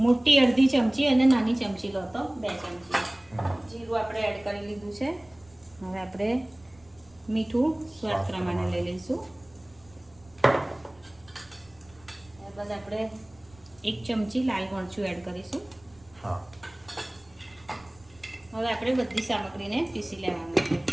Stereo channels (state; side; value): noise; right; rumble, 28 dB below the sound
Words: મોટી અડધી ચમચી અને નાની ચમચી લો તો 2 ચમચી જીરું આપણે એડ કરી લીધું છે. હવે આપણે મીઠું સ્વાદ પ્રમાણે લઈ લઈશું. ત્યારબાદ આપણે 1 ચમચી લાલ મરચું એડ કરીશું. હા. હવે આપણે બધી સામગ્રીને પીસી લેવાનું છે.